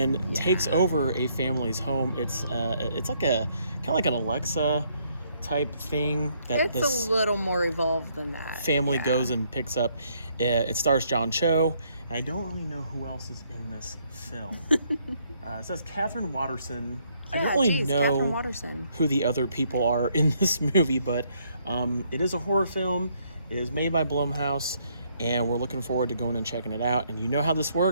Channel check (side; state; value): both; inverted; correlation -0.70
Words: takes over a family's home. It's like a kind of like an Alexa type thing that It's this a little more evolved than that. family goes and picks up. It stars John Cho. I don't really know who else is in this film. It says Catherine Watterson. I don't really know who the other people are in this movie, but it is a horror film. It is made by Blumhouse, and we're looking forward to going and checking it out. And you know how this